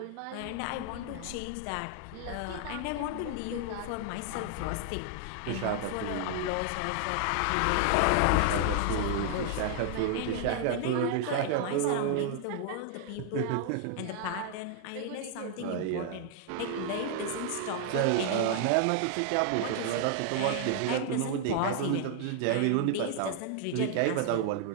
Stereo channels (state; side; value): different; both; correlation 0.00